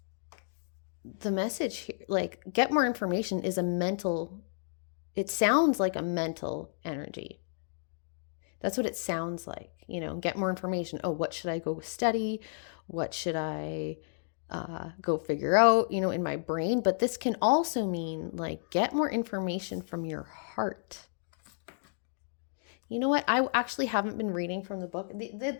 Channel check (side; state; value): right; silent; digital silence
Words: the message here, like get more information, is it sounds like a mental energy. That's what it sounds like, get more information. Oh, what should I go study? What should I go figure out, in my brain. But this can also mean like get more information from your heart. You know what? I actually haven't been reading from the book. The